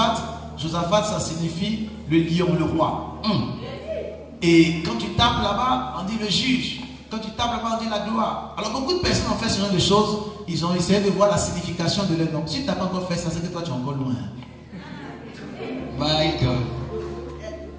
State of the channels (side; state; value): both; identical; correlation 1.00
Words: Josaphat ça signifie le lion, le roi. Et quand tu tapes là-bas, on dit le juge. Quand tu tapes là-bas, on dit la gloire. Alors beaucoup de personnes ont fait ce genre de choses. Ils ont essayé de voir la signification de leur nom. Si tu n'as pas encore fait ça, c'est que toi tu es encore loin. My God.